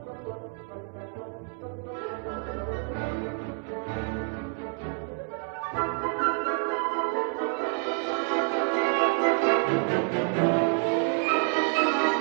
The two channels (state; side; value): quieter; left; 36.2 dB